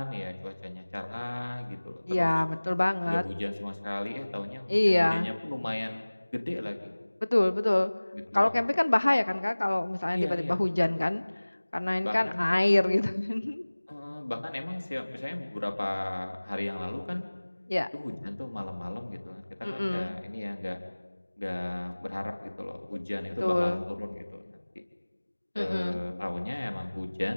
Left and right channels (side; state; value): both; inverted; correlation -1.00